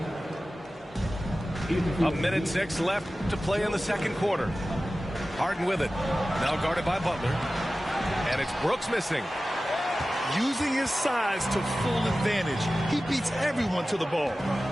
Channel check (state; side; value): normal; both; correlation 0.95